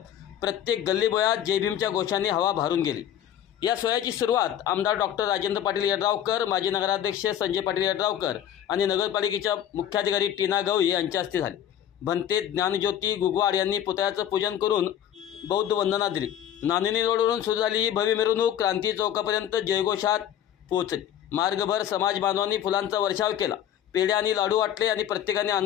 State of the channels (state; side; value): quieter; right; 10.5 dB